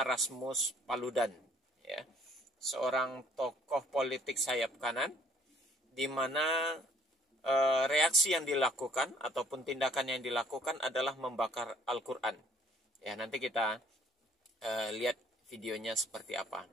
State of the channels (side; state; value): both; normal; correlation 0.61